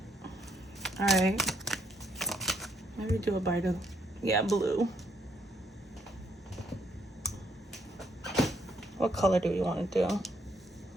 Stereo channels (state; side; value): normal; both; correlation 0.72